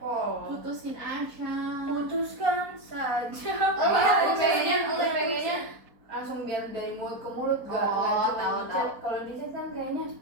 putusin aja. Putuskan saja. Gue pengennya langsung biar dari mulut ke mulut, gak tahu. kalau di chat kan kayaknya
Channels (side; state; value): left; late; 4.2 ms